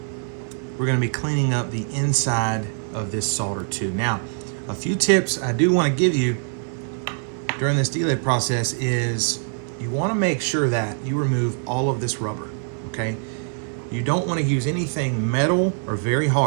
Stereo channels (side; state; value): left; silent; 63 dB below the other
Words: we're gonna be cleaning up the inside of this solder too. Now, a few tips I do wanna give you during this delid process is you wanna make sure that you remove all of this rubber, okay? You don't want to use anything metal or very